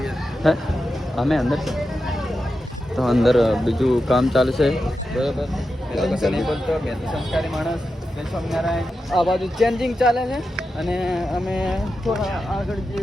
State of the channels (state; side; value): normal; both; correlation 0.90